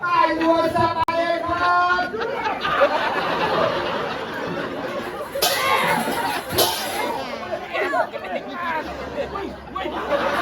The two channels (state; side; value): identical; both; correlation 1.00